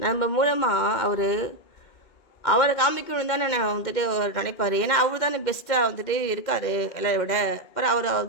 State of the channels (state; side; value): late; right; 2.1 ms